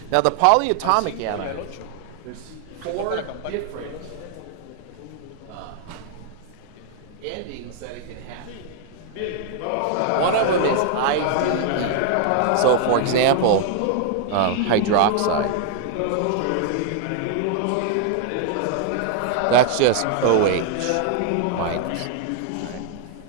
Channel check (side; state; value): both; different; correlation 0.00